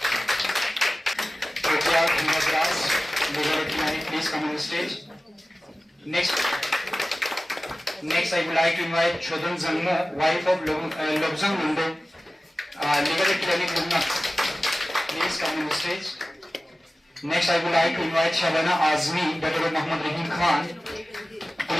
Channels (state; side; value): normal; both; correlation 0.96